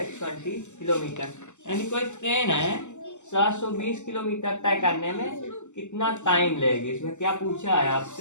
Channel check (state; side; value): late; right; 0.84 ms